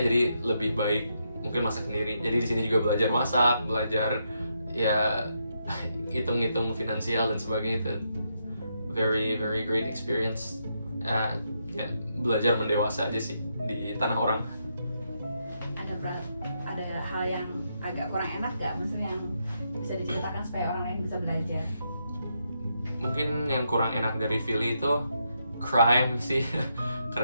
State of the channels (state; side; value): inverted; both; correlation -0.80